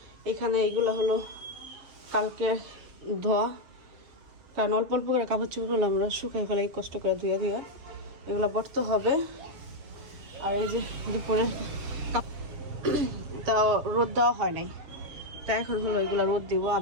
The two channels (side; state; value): left; late; 7.0 ms